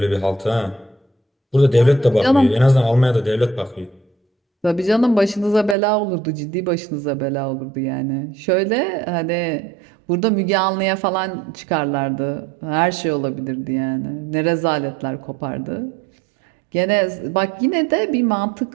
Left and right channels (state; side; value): drops out; left; at 5.8 s